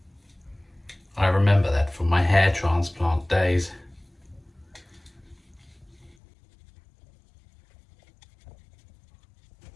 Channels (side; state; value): right; drops out; at 6.2 s